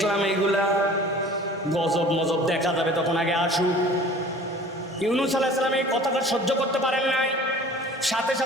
এইগুলা, গজব মজব দেখা যাবে তখন, আগে আসুক। ইউনূস আলাইহিস সালাম এই কথাটা সহ্য করতে পারেন নাই, সাথে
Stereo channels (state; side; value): normal; both; correlation 0.46